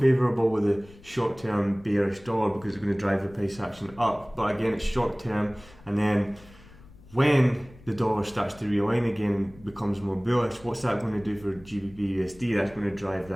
with a short-term bearish dollar, because it's going to drive the price action up. But again, it's short-term, and then when the dollar starts to realign again and becomes more bullish, what's that going to do for GBPUSD? That's going to drive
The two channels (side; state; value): left; noise; rumble, 23 dB below the sound